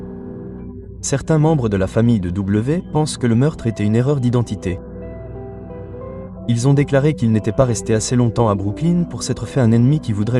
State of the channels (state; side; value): identical; both; correlation 1.00